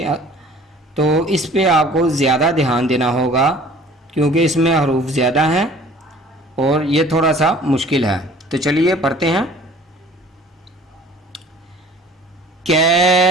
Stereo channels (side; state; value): both; normal; correlation 0.49